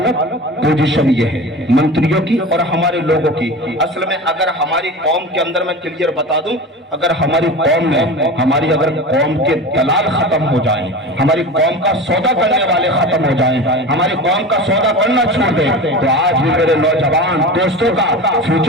पोजीशन ये है, मंत्रियों की और हमारे लोगों की। असल में अगर हमारी कौम के अंदर मैं क्लियर बता दूं, अगर हमारी कौम में, हमारी अगर कौम के दलाल खत्म हो जाएं, हमारी कौम का सौदा करने वाले खत्म हो जाएं, हमारी कौम का सौदा करना छोड़ दे, तो आज भी मेरे नौजवान दोस्तों का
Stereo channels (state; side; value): normal; both; correlation 0.31